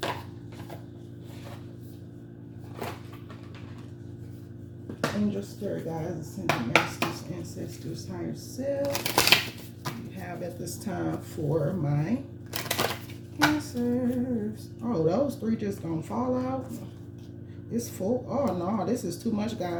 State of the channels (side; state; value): both; identical; correlation 1.00